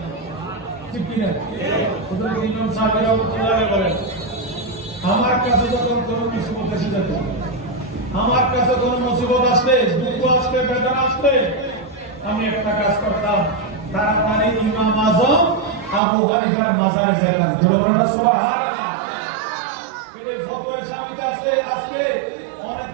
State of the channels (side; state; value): left; drops out; at 16.0 s